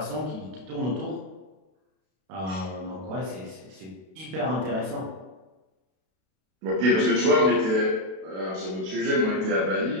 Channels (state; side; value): late; left; 32 ms